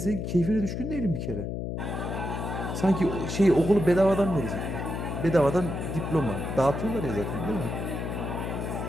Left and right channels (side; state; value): left; noise; hum, 4 dB below the sound